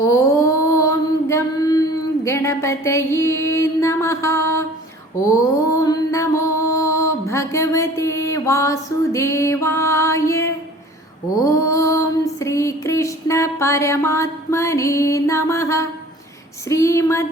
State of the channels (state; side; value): normal; both; correlation 0.47